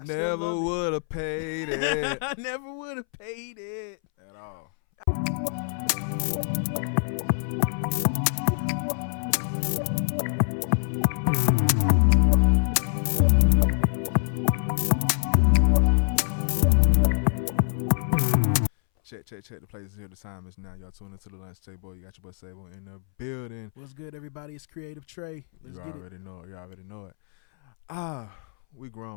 would have paid it. I never would have paid it At all. Check. The place is here. The time is now. Y'all tune into the lunch table. You got your boy Sable in the building. What's good, everybody? It's Creative Trey. Let's get it. You already know it. We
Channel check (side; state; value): right; silent; 61 dB below the other